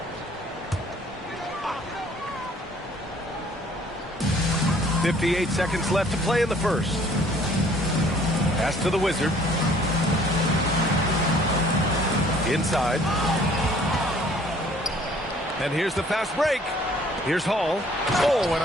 58 seconds left to play in the first. Pass to the Wizard. Inside. And here's the fast break. Here's Hall. Oh, and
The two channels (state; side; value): normal; both; correlation 0.57